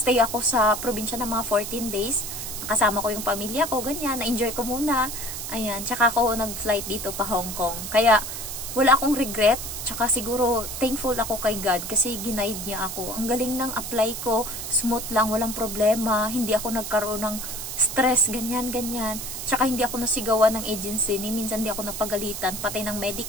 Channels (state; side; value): noise; right; hiss, 6 dB below the sound